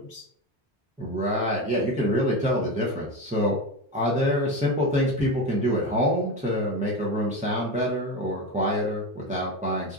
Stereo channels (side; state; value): both; normal; correlation 0.20